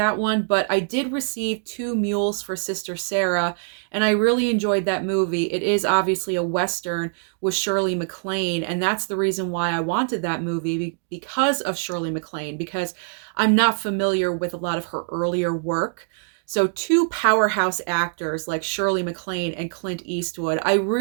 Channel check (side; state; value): left; silent; digital silence